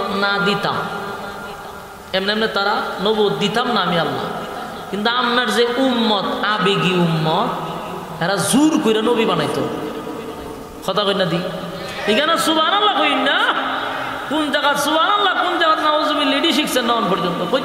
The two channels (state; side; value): identical; both; correlation 1.00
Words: না দিতাম, এমনি এমনি তারা নবুয়ত দিতাম না আমি আল্লাহ, কিন্তু আপনার যে উম্মত, আবেগী উম্মত, এরা জোর করে নবী বানাইতো। কথা কই না দি, এখানে সুবহানাল্লাহ কই না, কোন জায়গা সুবহানাল্লাহ, কোন জায়গা নাউজুবিল্লাহ, এডি শিখছেন না পর্যন্ত,